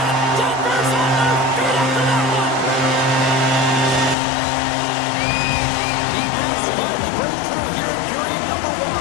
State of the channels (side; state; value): right; drops out; at 4.2 s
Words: Denver's on their feet after that one. The Avs finally break through here in period number